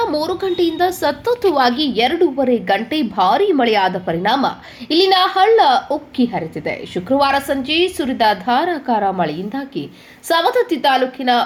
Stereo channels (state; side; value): identical; both; correlation 1.00